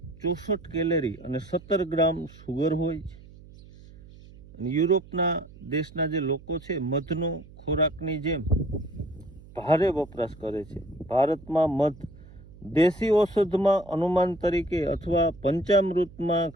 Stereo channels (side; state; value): right; noise; hum, 20 dB below the sound